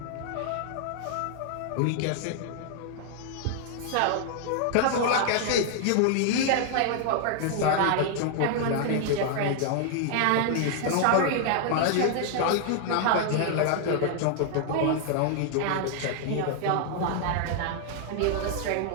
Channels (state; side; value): different; both; correlation 0.00